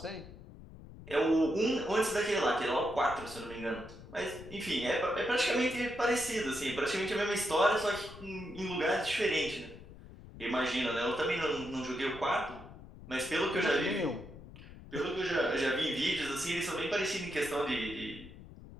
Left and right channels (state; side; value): noise; left; rumble, 16 dB below the sound